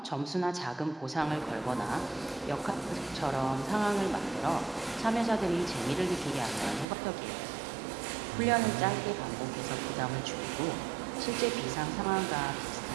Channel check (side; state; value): left; drops out; at 6.9 s